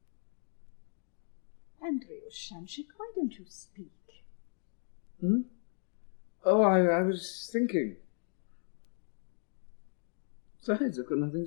Andrewsha, why don't you speak? Oh, I was thinking. Besides, I've got nothing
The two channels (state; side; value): silent; right; digital silence